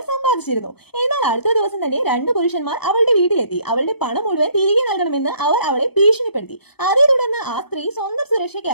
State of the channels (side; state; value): right; late; 0.97 ms